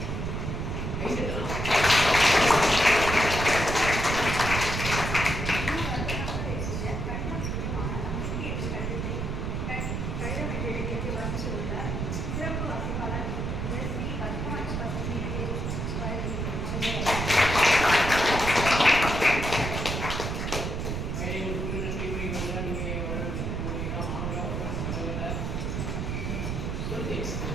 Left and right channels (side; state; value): right; noise; rumble, 2 dB below the sound